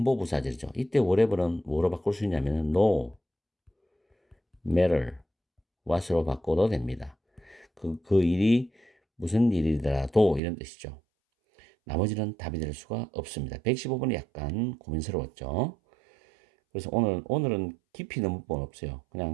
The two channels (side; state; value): left; drops out; at 10.4 s